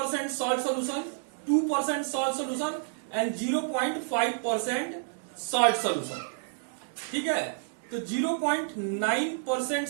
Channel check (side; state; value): left; silent; digital silence